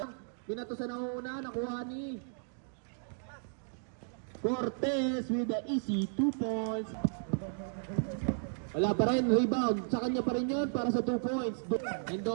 Pinato sa nauna, nakuha ni Cortez with the easy 2 points. Wala pa rin, rebound. Sa kanya pa rin yun para sa 2 points.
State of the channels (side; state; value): left; silent; digital silence